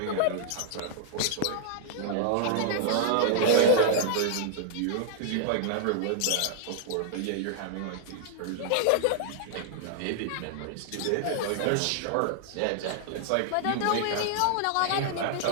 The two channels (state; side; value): different; both; correlation -0.01